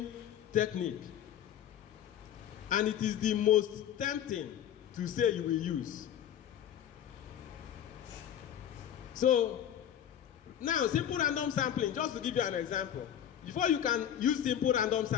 technique, and it is the most tempting to say you will use. So, now simple random sampling, just to give you an example, before you can use simple random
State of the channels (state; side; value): quieter; right; 10.2 dB